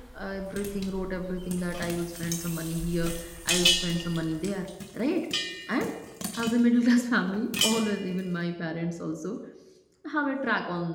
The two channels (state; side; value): identical; both; correlation 1.00